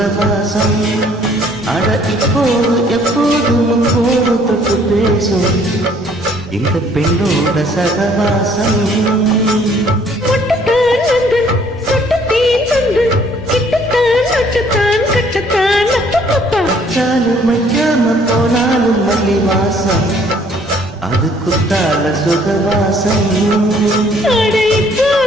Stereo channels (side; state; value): both; normal; correlation 0.60